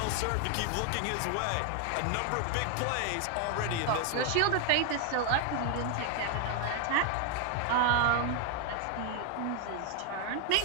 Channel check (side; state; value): both; different; correlation 0.00